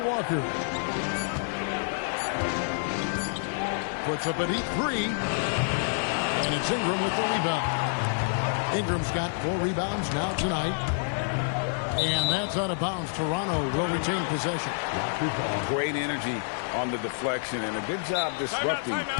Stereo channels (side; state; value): right; silent; digital silence